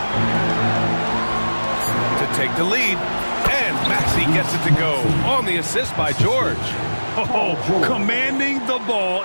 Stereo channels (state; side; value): inverted; both; correlation -1.00